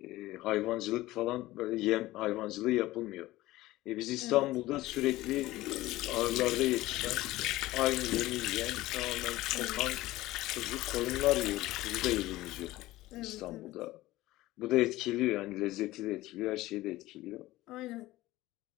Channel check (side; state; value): right; quieter; 17.5 dB